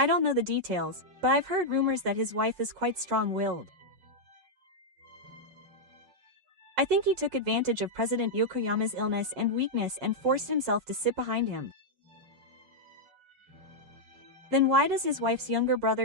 don't know the details, but I've heard rumors that his wife is quite strong-willed. I think he took advantage of President Yokoyama's illness and weakness and forced himself to sit behind him. Then why does his wife's younger brother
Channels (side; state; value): left; late; 7.5 ms